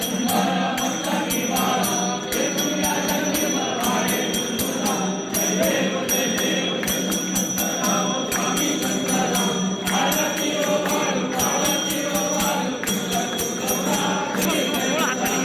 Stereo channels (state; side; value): identical; both; correlation 1.00